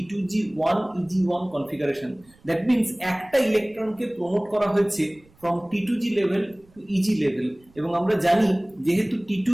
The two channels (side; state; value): right; noise; rumble, 29 dB below the sound